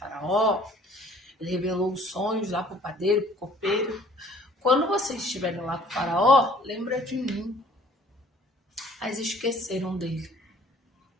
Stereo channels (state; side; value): normal; both; correlation 0.55